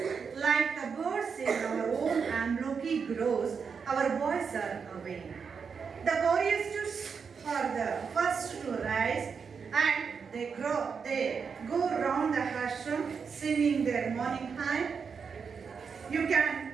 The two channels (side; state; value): left; quieter; 5.9 dB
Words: like the birds in our own Amloki groves, our boys are awake. The choristers are the first to rise and they go round the ashram singing their morning hymn. You can